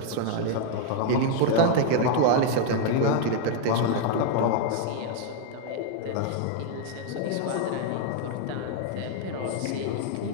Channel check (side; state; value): both; different; correlation 0.00